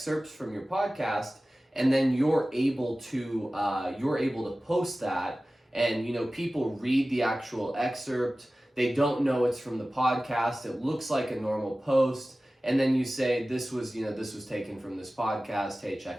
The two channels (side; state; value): both; normal; correlation 0.96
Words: from your podcast and then you're able to post that, and you know, people read the actual excerpt, they don't know it's from the podcast, it looks like a normal post, and then you say this was taken from this podcast, hey,